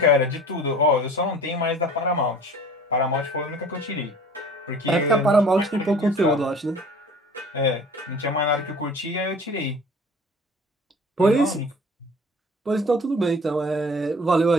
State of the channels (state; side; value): normal; both; correlation 0.46